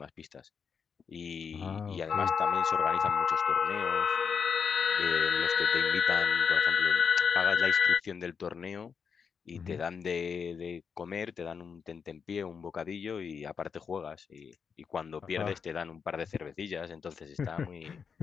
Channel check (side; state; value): right; quieter; 6.3 dB